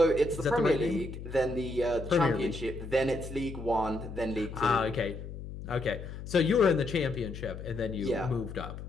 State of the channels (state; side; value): noise; left; hum, 10 dB below the sound